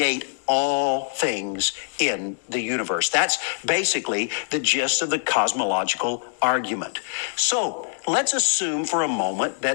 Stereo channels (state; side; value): silent; right; digital silence